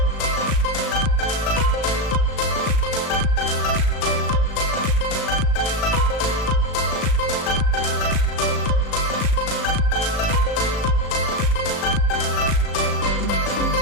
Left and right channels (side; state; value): right; late; 36 ms